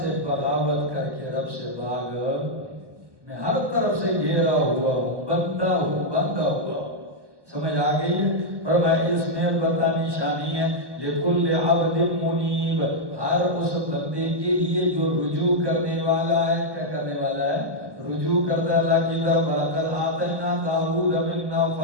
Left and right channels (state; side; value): late; left; 1.2 ms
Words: بغاوت کر کے رب سے بھاگ, میں ہر طرف سے گھیرا ہوا ہوں, بندہ ہوا. سمجھ آ گئی ہے؟ فرمایا اس میں البتہ نشانی ہے لکل عبد منیب ہر اس بندے کے لیے جو رجوع کرنے والا ہے. کیا کرنے والا ہے؟ رجوع کرتا ہے اللہ کی طرف. وَلَقَدْ آتَيْنَا دَاوُودَ مِنَّا